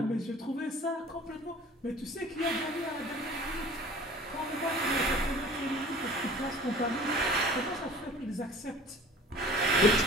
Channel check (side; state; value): both; normal; correlation 0.45